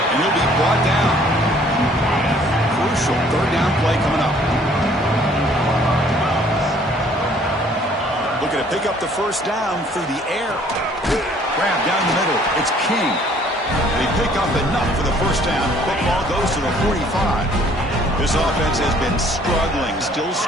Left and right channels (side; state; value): both; normal; correlation 0.59